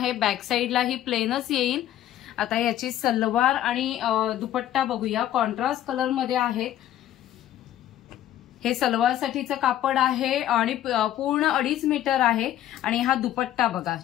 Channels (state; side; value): quieter; right; 12.4 dB